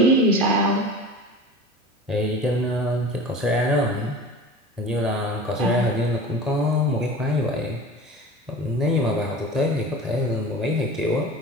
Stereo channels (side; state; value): both; normal; correlation 0.36